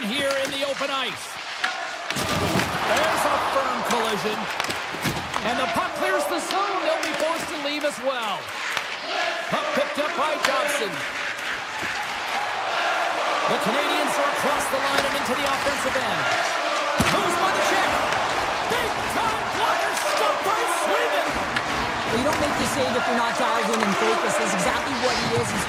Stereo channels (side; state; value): both; identical; correlation 1.00